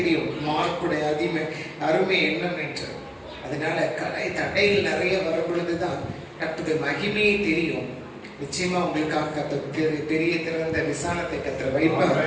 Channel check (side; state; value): both; identical; correlation 1.00